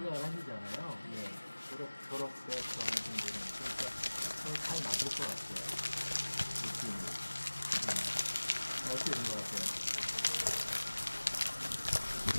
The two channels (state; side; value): inverted; both; correlation -1.00